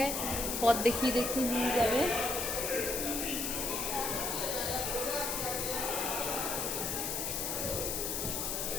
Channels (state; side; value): noise; left; hiss, 1 dB below the sound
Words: পথ দেখিয়ে দেখিয়ে নিয়ে যাবে।